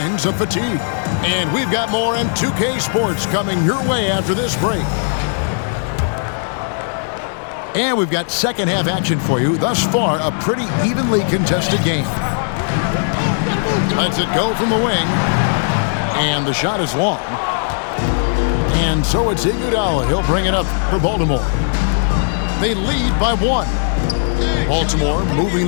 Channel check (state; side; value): silent; right; 68 dB below the other